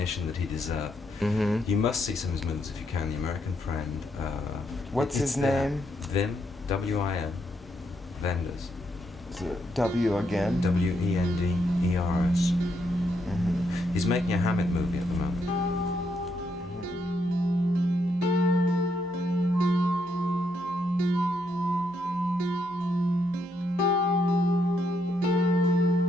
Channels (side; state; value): both; normal; correlation 0.77